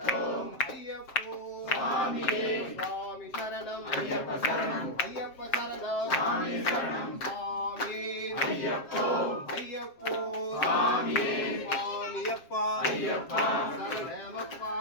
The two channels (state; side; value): late; right; 7.6 ms